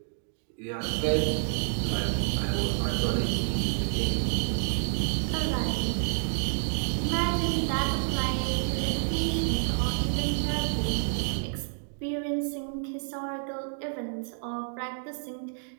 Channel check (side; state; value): left; silent; digital silence